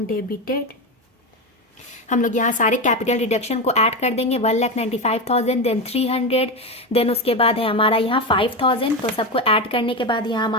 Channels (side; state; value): both; normal; correlation 0.16